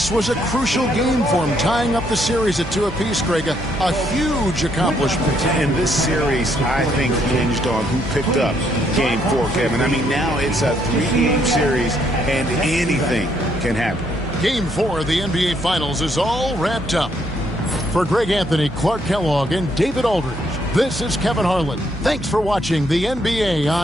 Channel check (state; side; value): normal; both; correlation 0.72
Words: was a crucial game for them, tying up the series at 2 apiece, Greg. A huge accomplishment. And this series, I think, hinged on who picked up Game 4, Kevin. I mean, now it's a 3-game series, and anything can happen. Game 4 of the NBA Finals is all wrapped up. For Greg Anthony, Clark Kellogg, and David Aldridge, this is Kevin Harlan. Thanks for watching the NBA